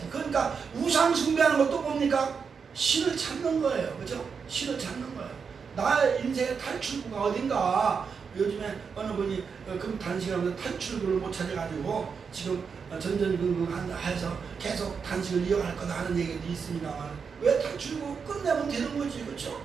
그러니까 우상 숭배하는 것도 뭡니까? 신을 찾는 거예요. 그렇죠? 신을 찾는 거예요. 나의 인생의 탈출구가 어딘가. 요즘에 어느 분이 단식하면서 탈출구를 못 찾아가지고 지금 전전긍긍해서 계속 단식을 이어갈 거다 하는 얘기도 있습니다만, 왜 탈출구 끝내면 되는 거지. 그렇죠?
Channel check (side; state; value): left; quieter; 5.9 dB